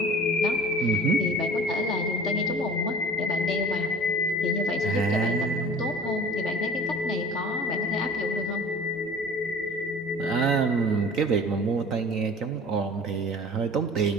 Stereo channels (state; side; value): normal; both; correlation 0.43